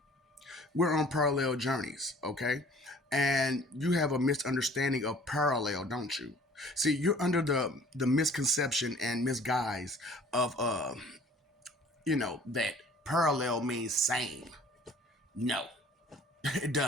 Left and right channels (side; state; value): both; normal; correlation 0.51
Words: We're on parallel journeys, okay? And you have a misunderstanding of parallel, don't you? See, you're under the misconception and misguise of, that parallel means same. No, it